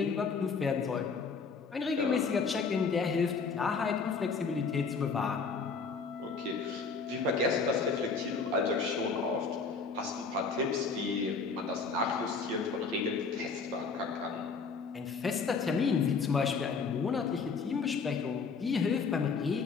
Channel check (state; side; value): quieter; right; 4.9 dB